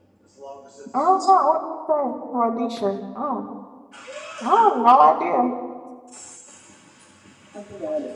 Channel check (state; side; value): identical; both; correlation 1.00